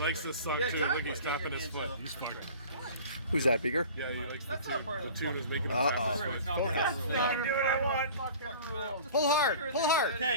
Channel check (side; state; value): both; inverted; correlation -0.42